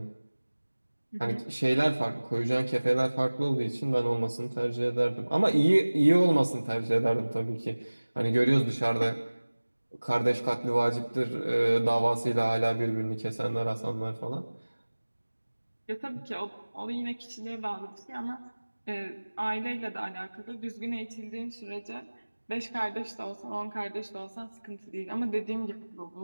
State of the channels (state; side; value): inverted; both; correlation -1.00